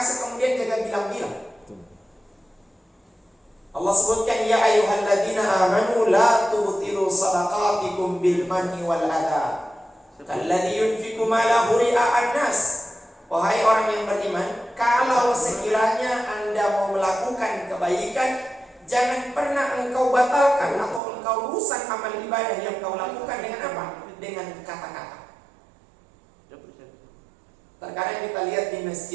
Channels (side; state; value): left; drops out; at 21.0 s